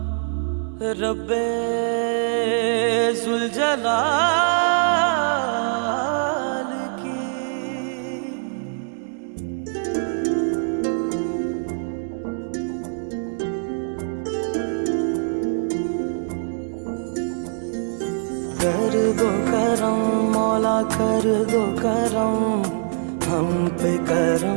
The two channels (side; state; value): left; silent; digital silence